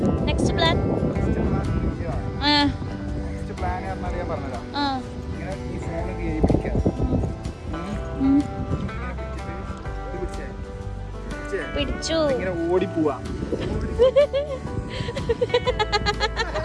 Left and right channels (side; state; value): both; identical; correlation 1.00